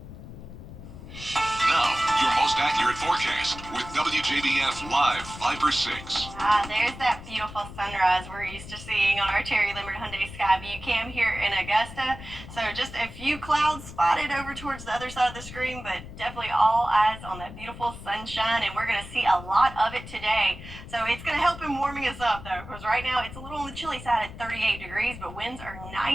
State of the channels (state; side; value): noise; left; rumble, 13 dB below the sound